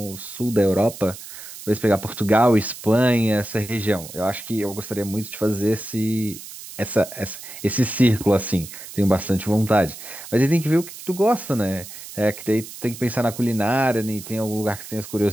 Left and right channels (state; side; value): noise; right; hiss, 14 dB below the sound